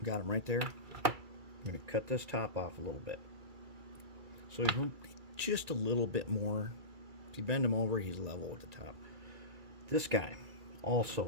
Got him right there. I'm going to cut this top off a little bit. So just a little bit more. If you bend him over, he's level with the top. This guy,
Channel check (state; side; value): late; left; 2.3 ms